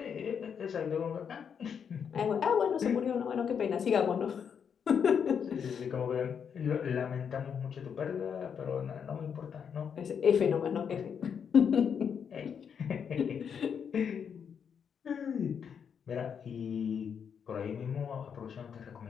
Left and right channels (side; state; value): right; quieter; 7.3 dB